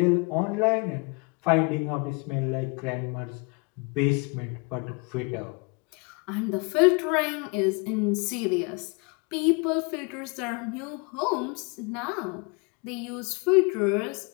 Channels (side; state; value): right; quieter; 31.9 dB